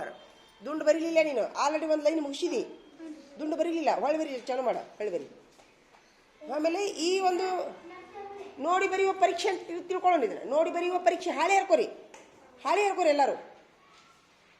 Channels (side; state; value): both; identical; correlation 1.00